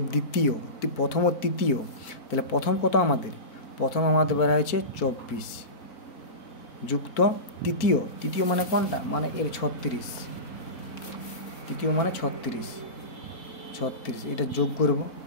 তৃতীয়। তাহলে প্রথম কত আমাদের? প্রথম আমাদের বের হয়েছে 24 যুক্ত তৃতীয় মানে কোনটা? মানে এর 36। তৃতীয় মানে 36, এটা যোগ করব।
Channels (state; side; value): late; right; 4.5 ms